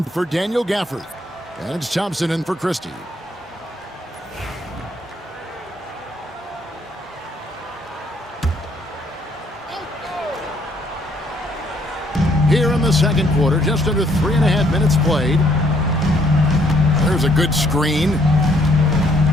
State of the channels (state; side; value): normal; both; correlation 0.67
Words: for Daniel Gafford. And it's Thompson in for Christie. Here in the second quarter, just under 3.5 minutes played. There's a good screen.